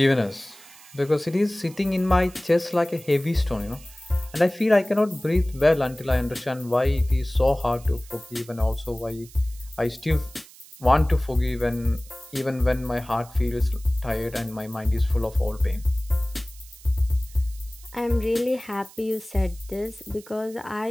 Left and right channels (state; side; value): noise; right; hiss, 21 dB below the sound